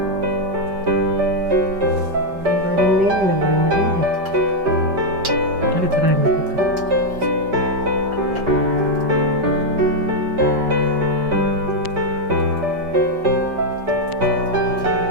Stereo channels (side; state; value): left; late; 5.2 ms